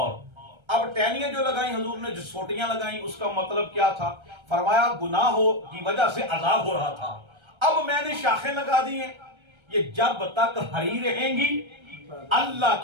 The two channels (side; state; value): left; late; 1.3 ms